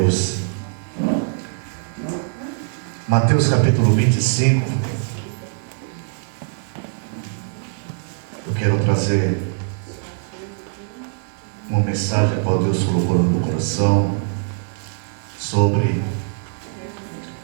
Mateus capítulo 25. Eu quero trazer uma mensagem que Deus colocou no meu coração sobre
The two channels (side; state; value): left; silent; 63 dB below the other